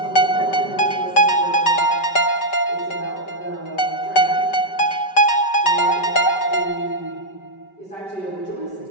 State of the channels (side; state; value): right; late; 5.2 ms